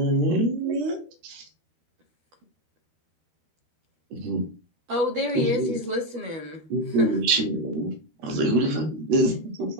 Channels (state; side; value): late; left; 13 ms